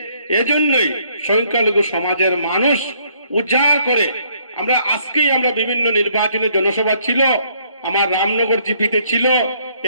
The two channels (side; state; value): both; inverted; correlation -0.67